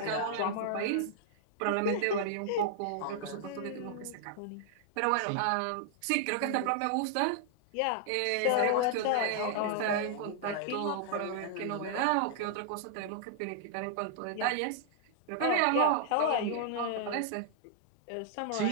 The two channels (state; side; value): different; both; correlation -0.01